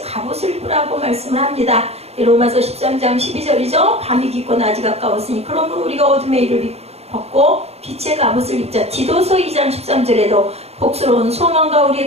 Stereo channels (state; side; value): late; left; 0.30 ms